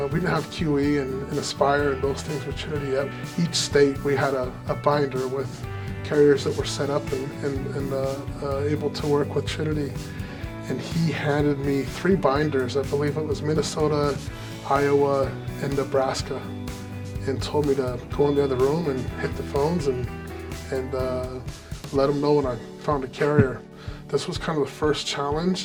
and Aspire and those things with Trinity yet. Each state we had a binder with carriers that were set up and able to work with Trinity. And he handed me 3 binders. I believe it was Minnesota, Iowa, and Nebraska, and told me to go in the other room and hit the phones and let him know when I found a carrier. This was kind of the first challenge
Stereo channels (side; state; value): both; identical; correlation 1.00